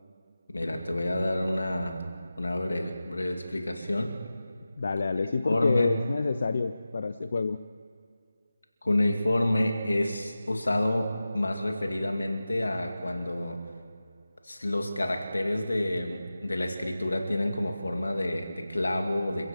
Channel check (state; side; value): inverted; both; correlation -0.95